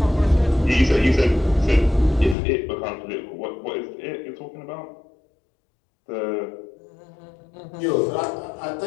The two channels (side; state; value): right; drops out; at 2.4 s